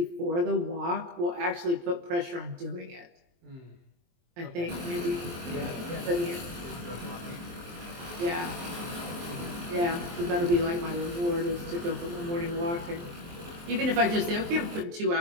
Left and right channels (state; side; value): late; left; 23 ms